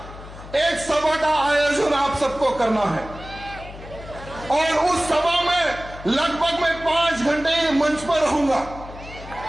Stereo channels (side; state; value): left; noise; hum, 15 dB below the sound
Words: एक सभा का आयोजन आप सबको करना है और उस सभा में लगभग मैं 5 घंटे मंच पर रहूंगा।